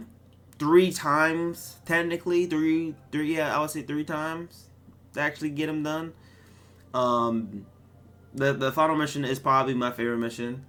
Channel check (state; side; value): identical; both; correlation 1.00